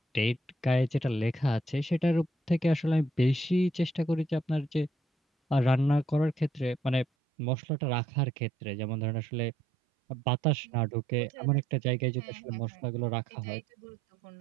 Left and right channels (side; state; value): left; drops out; at 7.1 s